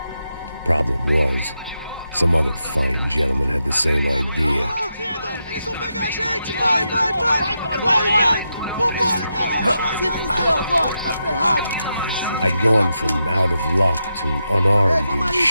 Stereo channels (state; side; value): inverted; both; correlation -0.85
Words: Problem was, some other fine gentleman had the same idea. Eles vão pegar a gente! Vai! Vambora, caralho! Se fudeu agora, tá ferrado! I'd gone from out of luck to unarmed and